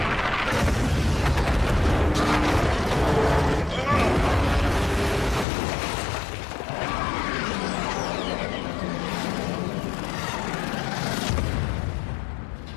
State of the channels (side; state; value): right; drops out; at 5.5 s